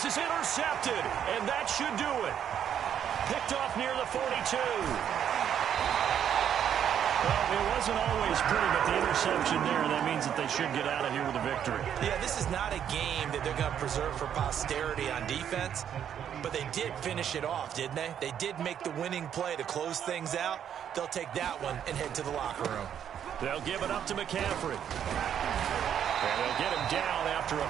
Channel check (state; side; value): quieter; left; 9.2 dB